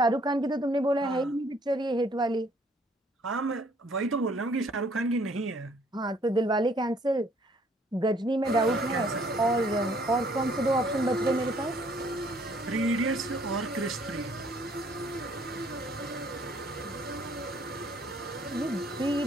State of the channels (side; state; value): both; normal; correlation 0.62